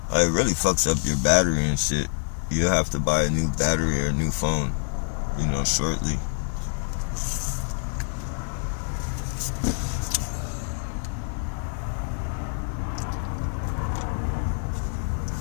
It really fucks up your battery and shit. You'll have to buy a new battery or a new phone, you know, shortly.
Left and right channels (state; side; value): silent; right; digital silence